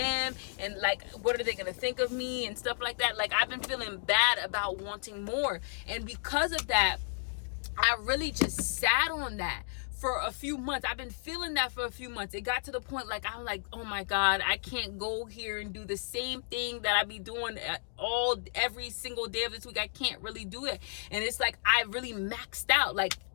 and like, what are they gonna think of me and stuff like that. Like, I've been feeling bad about wanting more, and because of that, I really just sat on that for a few months. I've been feeling that for a few months. It got to the point, like, I'm like, oh my God, I can't go here and do the same thing that I be doing every single day of this week. I can't really do it. And it's like, I really maxed out, like,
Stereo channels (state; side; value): silent; right; digital silence